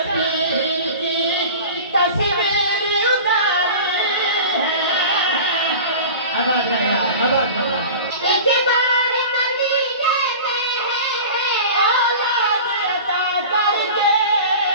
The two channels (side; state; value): both; inverted; correlation -0.36